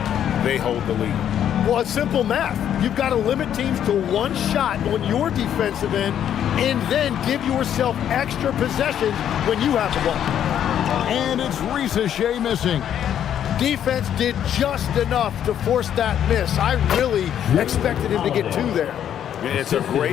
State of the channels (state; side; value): quieter; right; 9.9 dB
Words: they hold the lead. Well, it's simple math. You've got to limit teams to one shot on your defensive end and then give yourself extra possessions when you have the ball. And it's Ricochet missing. Defense did just enough to force that miss. I really expected him to get 2 there. It's a